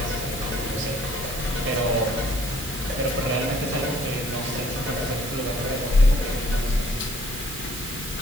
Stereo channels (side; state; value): right; noise; hiss, 8 dB below the sound